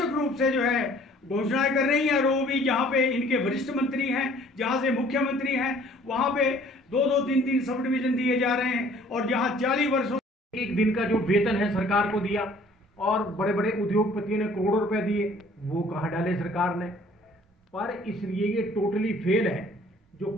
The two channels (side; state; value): both; normal; correlation 0.55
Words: रूप से जो है घोषणाएं कर रही है। और वो भी जहाँ पे इनके वरिष्ठ मंत्री हैं, जहाँ से मुख्यमंत्री हैं, वहाँ पे 2-2, 3-3 सब डिवीजन दिए जा रहे हैं और जहाँ 40 वर्षों एक दिन का जो वेतन है सरकार को दिया और बड़े बड़े उद्योगपतियों ने करोड़ों रुपए दिए, वो कहाँ डाले सरकार ने। पर इसलिए ये टोटली फेल है। जो